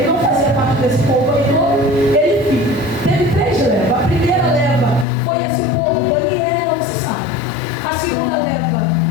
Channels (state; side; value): drops out; right; at 5.1 s